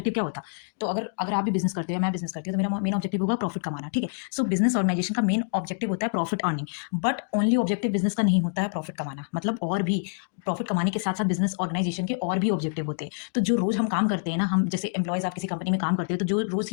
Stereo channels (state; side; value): silent; right; digital silence